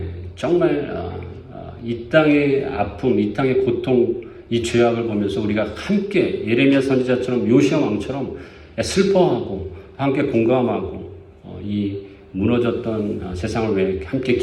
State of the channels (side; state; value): both; identical; correlation 1.00